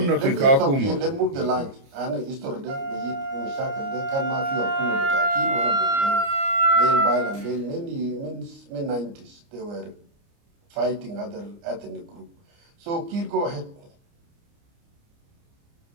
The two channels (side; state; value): left; late; 29 ms